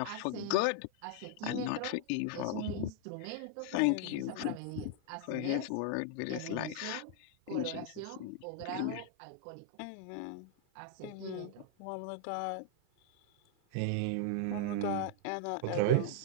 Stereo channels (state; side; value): different; both; correlation 0.00